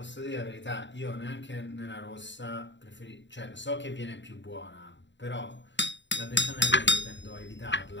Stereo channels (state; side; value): late; right; 0.53 ms